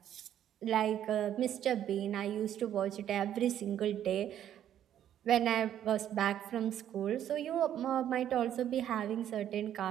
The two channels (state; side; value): quieter; left; 10.7 dB